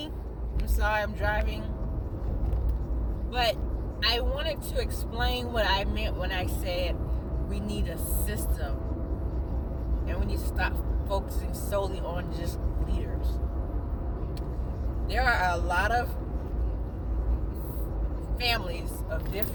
I'm sorry, I'm driving. But I wanted to explain what I meant when I said we need a system. And we need to stop focusing solely on just leaders. There are a lot of families of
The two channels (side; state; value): both; identical; correlation 1.00